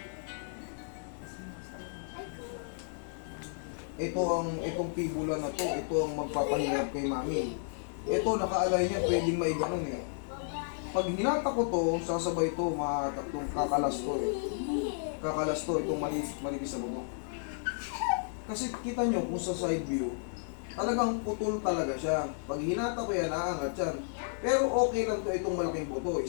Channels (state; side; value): silent; right; 56 dB below the other